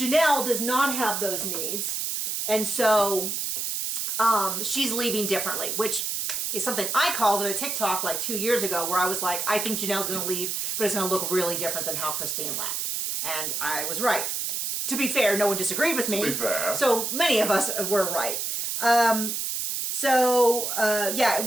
does not have those needs, and so she's leaving differently, which is something I called in a TikTok like 2 years ago where I was like, I think Janelle's going to leave, but it's going to look really different than how Christine left. And I was right. To be fair, no one disagreed with me. To be fair. So many of us were right. Yeah,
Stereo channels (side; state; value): right; noise; hiss, 2 dB below the sound